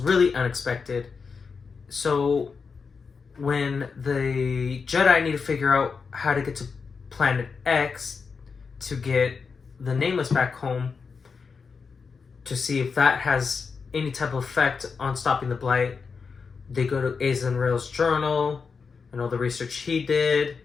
unexpected. So when the Jedi need to figure out how to get to Planet X to get the Nameless back home, to see if that has any type of effect on stopping the Blight, they go to Azen Rail's journal and all the research he did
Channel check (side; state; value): right; quieter; 5.3 dB